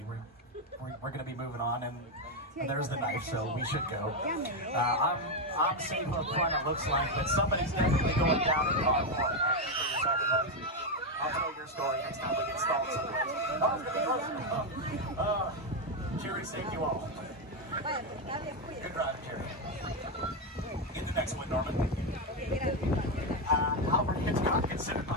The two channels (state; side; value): normal; both; correlation 0.06